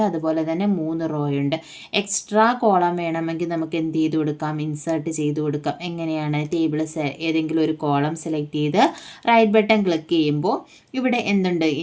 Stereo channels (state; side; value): identical; both; correlation 1.00